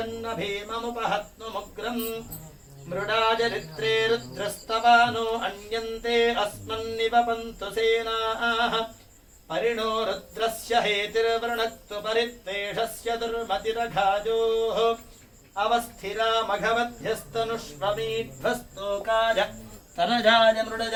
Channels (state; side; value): identical; both; correlation 1.00